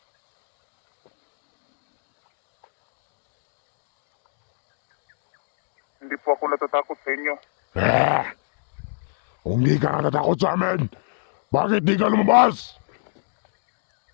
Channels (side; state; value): right; silent; digital silence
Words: hindi po ako natatakot sa inyo. Kung di ka natatakot sa amin, bakit di ka lumabas?